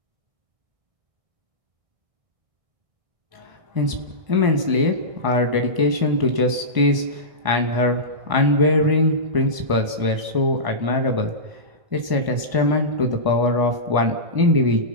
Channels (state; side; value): late; left; 1.0 ms